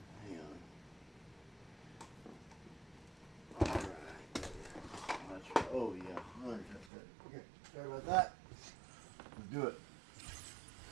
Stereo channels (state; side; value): drops out; left; at 6.9 s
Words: Hang on. Alright. Oh, yeah. That's good. Okay. Sorry about that. Let's do it.